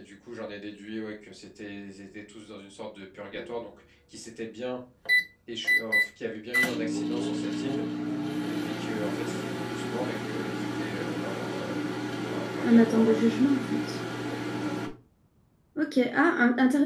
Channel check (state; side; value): identical; both; correlation 1.00